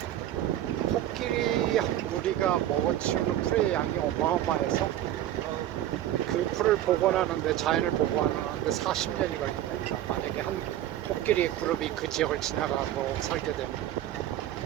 코끼리 한 무리가 먹어치우는 풀의 양이 어마어마해서 그 그 풀을 복원하는데, 자연을 복원하는데 40년이 걸린다. 만약에 한 코끼리 그룹이 그 지역을 지나가고 살게 되면.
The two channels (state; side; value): quieter; left; 12.7 dB